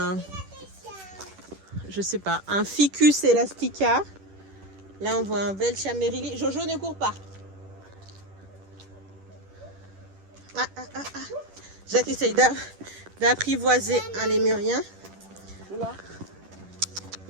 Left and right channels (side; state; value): left; late; 10 ms